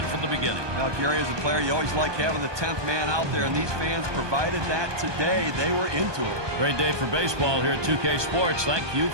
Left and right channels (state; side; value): late; left; 1.2 ms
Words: from the beginning. Now, Gary, as a player, you always like having the 10th man out there, and these fans provided that today. They were into it. Great day for baseball here at 2K Sports. Thank you